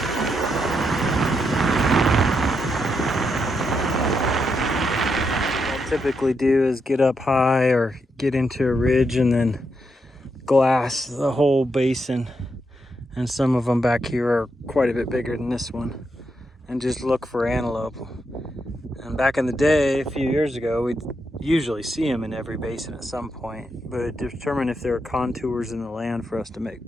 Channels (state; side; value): normal; both; correlation 0.82